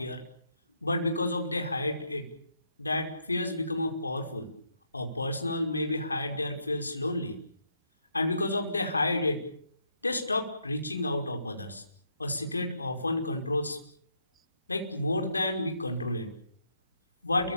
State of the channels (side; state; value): both; inverted; correlation -0.77